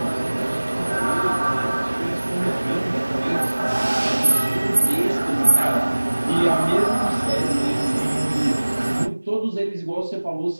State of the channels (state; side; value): inverted; both; correlation -1.00